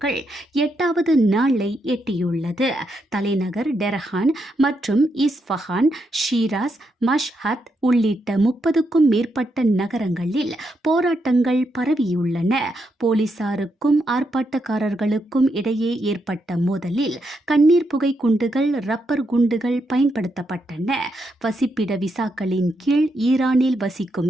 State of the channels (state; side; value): normal; both; correlation 0.81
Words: 8வது நாளை எட்டியுள்ளது. தலைநகர் டெஹ்ரான் மற்றும் இஸ்ஃபஹான், ஷீராஸ், மஷ்ஹத் உள்ளிட்ட 30க்கும் மேற்பட்ட நகரங்களில் போராட்டங்கள் பரவியுள்ளன. போலீசாருக்கும் ஆர்ப்பாட்டக்காரர்களுக்கும் இடையே ஏற்பட்ட மோதலில் கண்ணீர் புகை குண்டுகள், ரப்பர் குண்டுகள் பயன்படுத்தப்பட்டன. வசிப்பிட விசாக்களின் கீழ் ஈரானில் வசிக்கும்